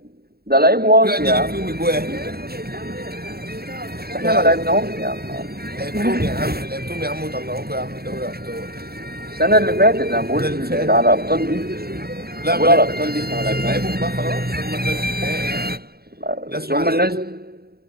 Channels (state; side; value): late; left; 0.45 ms